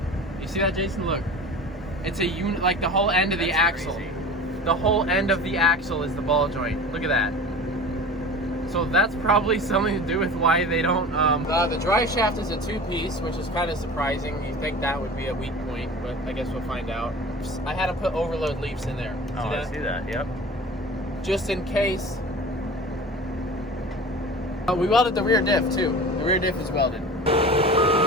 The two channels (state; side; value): normal; both; correlation 0.37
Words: You see that, Jason? Look, it's a unit. Like the whole end of the axle. Crazy. The whole end of the axle is the ball joint. Look at that. So that's probably something to do with why they don't. The drive shaft is a 2-piece, which is kind of surprising. You think that would be a weak point, but I guess we'll find out. I had to put overload leaves in there. Oh, I see that. Yep. Just in case. We welded the rear diff too. The rear diff is welded.